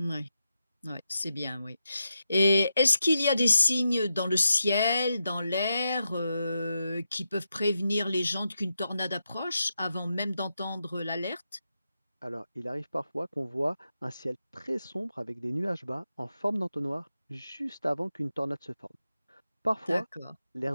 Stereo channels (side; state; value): both; inverted; correlation -0.87